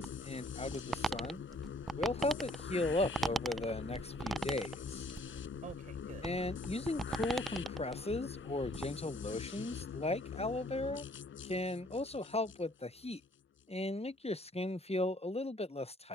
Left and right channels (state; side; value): normal; both; correlation 0.61